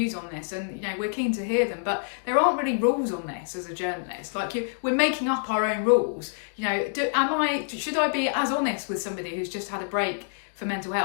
on this, and we're keen to hear them, but there aren't really rules on this as a journalist. Like we're making up our own rules. Should I be as honest with somebody who's just had a break for mental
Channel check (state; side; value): silent; right; digital silence